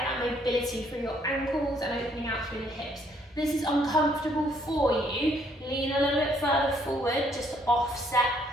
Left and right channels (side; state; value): both; normal; correlation 0.67